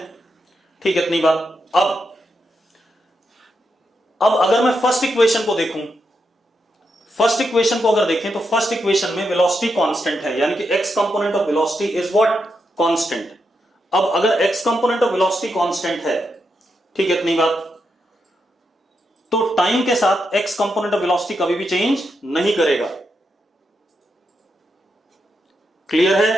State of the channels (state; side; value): normal; both; correlation 0.84